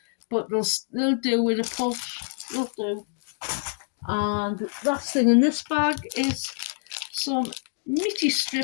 but they'll do with a push. They'll do. And the last thing in this bag is some meaty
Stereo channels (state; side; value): silent; right; 61 dB below the other